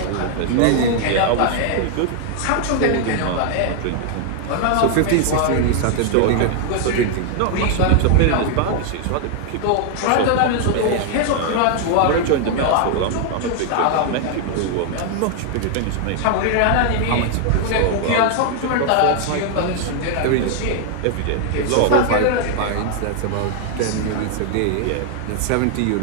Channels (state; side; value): different; both; correlation 0.00